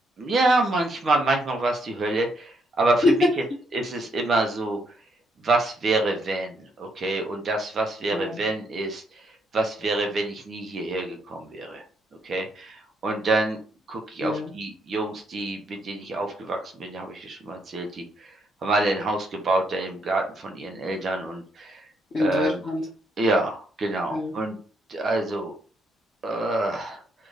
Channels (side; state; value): both; normal; correlation 0.75